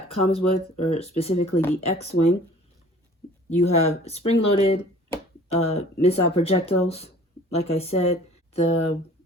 comes with, or specifically the X-Wing. You have spring-loaded missile projectiles. Like I said, the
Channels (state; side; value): normal; both; correlation 0.49